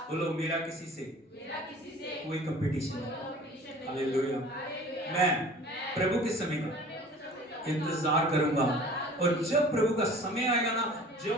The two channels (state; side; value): normal; both; correlation 0.45